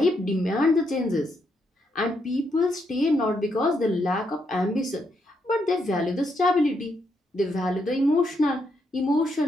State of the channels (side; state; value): both; normal; correlation 0.78